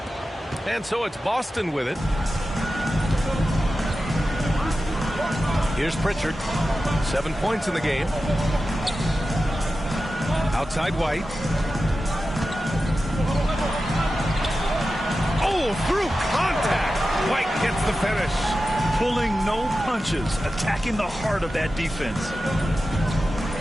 And so it's Boston with it. Here's Pritchard. 7 points in the game. Outside White. Oh, through contact. White gets the finish. Pulling no punches, attacking the heart of that defense.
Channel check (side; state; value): both; normal; correlation 0.93